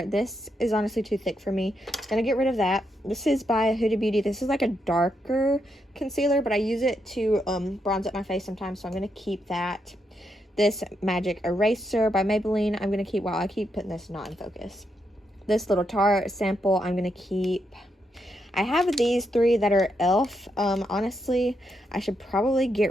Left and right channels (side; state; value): both; normal; correlation 0.81